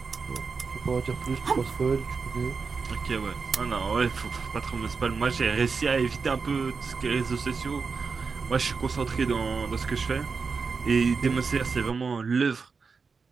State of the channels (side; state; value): left; quieter; 5.0 dB